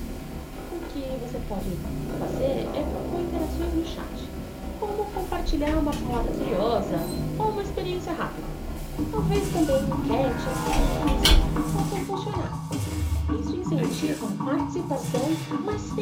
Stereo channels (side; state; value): both; identical; correlation 1.00